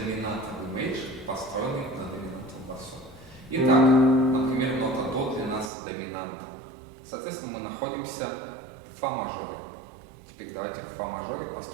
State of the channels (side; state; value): left; drops out; at 5.7 s